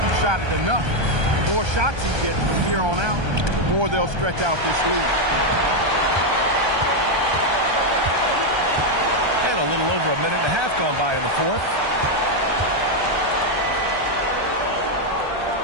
shot it enough. The more shots he gets from here on out, the more they'll stretch out this lead. And a little over a minute and a half gone by in the fourth.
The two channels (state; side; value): late; left; 1.3 ms